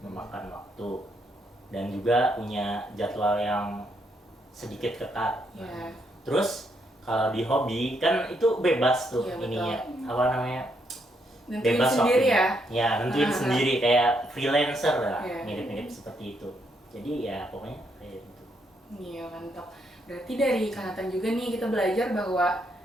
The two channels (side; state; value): both; normal; correlation 0.76